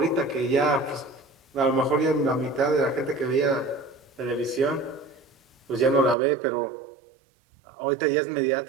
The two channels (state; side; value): drops out; left; at 6.2 s